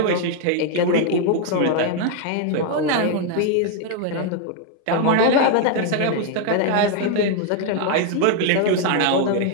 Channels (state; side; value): different; both; correlation 0.00